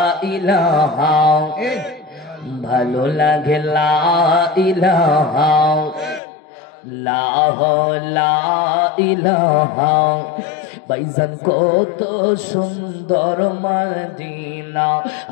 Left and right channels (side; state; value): right; drops out; at 6.2 s